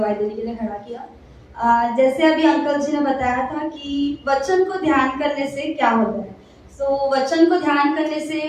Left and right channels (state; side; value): identical; both; correlation 1.00